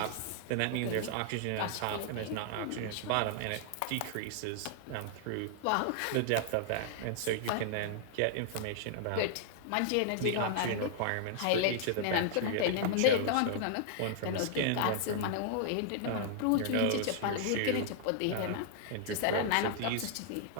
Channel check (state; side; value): different; both; correlation -0.01